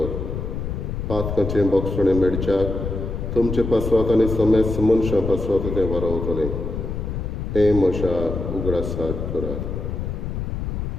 पातकाचें बोगसणें मेडच्याक तुमचे पासवात आनी समेस्त मनशां पासवात तें वारवतलें. हें म्हज्या उगडासाक करात.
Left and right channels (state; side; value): noise; left; rumble, 4 dB below the sound